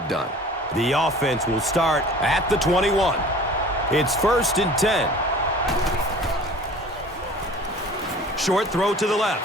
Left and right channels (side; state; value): both; normal; correlation 0.45